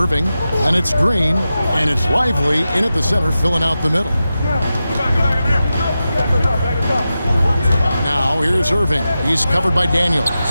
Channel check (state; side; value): inverted; both; correlation -0.92